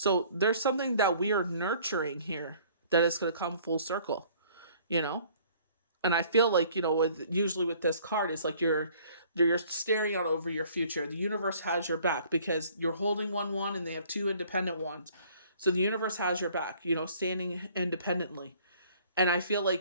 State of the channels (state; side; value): inverted; both; correlation -0.56